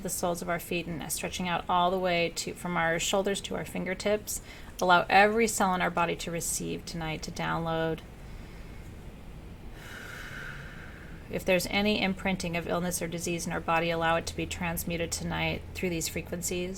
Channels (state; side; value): identical; both; correlation 1.00